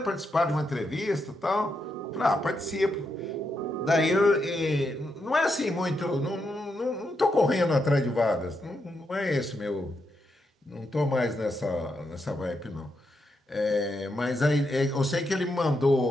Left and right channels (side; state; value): both; normal; correlation 0.82